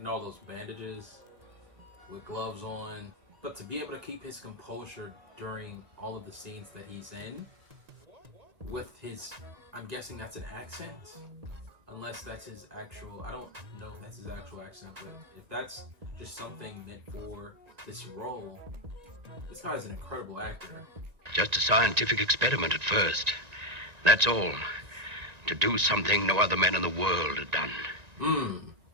all those bandages, with gloves on. But to be able to keep his composure during all of the scenes that he's in, with his, I'm guessing that's an accent, unless that's his actual, I don't know if that's his actual accent, but if that's just something meant for this role, this guy's an incredible actor. Just a scientific experiment at first. That's all. To do something no other man in the world had done.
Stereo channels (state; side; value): late; left; 1.9 ms